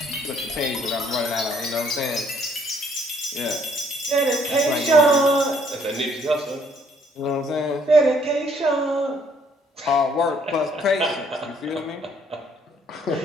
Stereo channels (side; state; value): both; normal; correlation 0.65